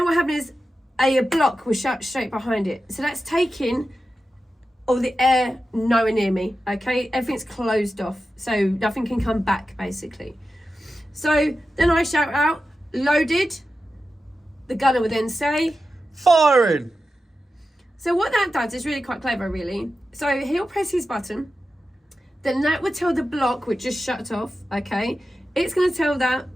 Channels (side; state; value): both; normal; correlation 0.92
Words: what happened is a block was shut straight behind it. So that's taking all the air nowhere near me, okay? Everything's closed off, so nothing can come back, basically. So then I shout out, loaded. The gunner would then say, firing. So what that does is really quite clever, really. So he'll press his button. then that would tell the block, which just shut off, okay? It's going to tell that